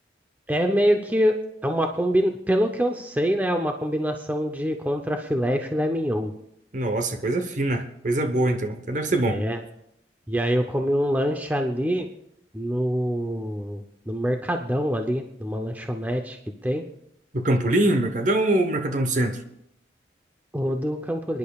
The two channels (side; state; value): both; normal; correlation 0.79